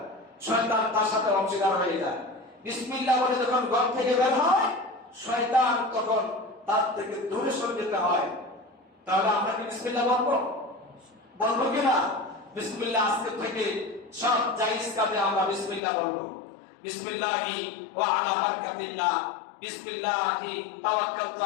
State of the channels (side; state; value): right; drops out; at 15.8 s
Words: শয়তান তার সাথে অংশীদার হয়ে যায়। বিসমিল্লাহ বলে যখন ঘর থেকে বের হয়, শয়তান তখন তার থেকে দূরে সরে যেতে হয়। তাহলে আমরা কি বিসমিল্লাহ বলবো? বলবো কিনা? বিসমিল্লাহ আজকে থেকে সব জায়েজ কাজে আমরা বিসমিল্লাহ বলবো। বিসমিল্লাহি ওয়া আলা বারাকাতিল্লাহ বিসমিল্লাহি তাওয়াক্কালতু